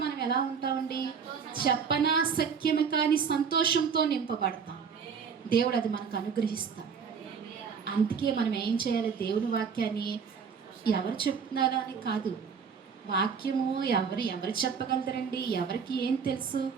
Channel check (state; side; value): quieter; left; 6.3 dB